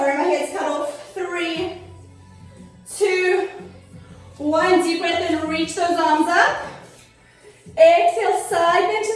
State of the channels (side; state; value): both; identical; correlation 1.00